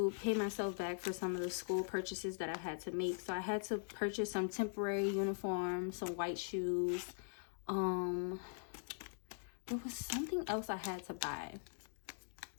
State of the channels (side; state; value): right; silent; digital silence